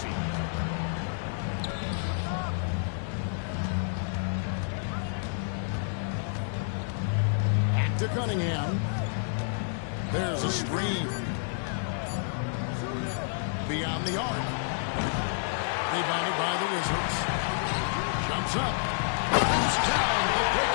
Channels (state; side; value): silent; right; digital silence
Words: Back to Cunningham. There's a screen. Beyond the arc. Rebounded by the Wizards. Jumps up. Goes down the